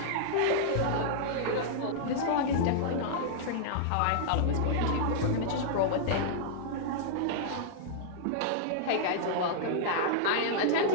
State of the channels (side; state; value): both; different; correlation -0.02